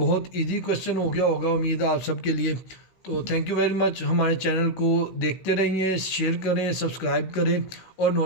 इजी क्वेश्चन हो गया होगा, उम्मीद है आप सब के लिए। तो थैंक यू वेरी मच। हमारे चैनल को देखते रहिए, शेयर करें, सब्सक्राइब करें और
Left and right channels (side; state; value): right; late; 17 ms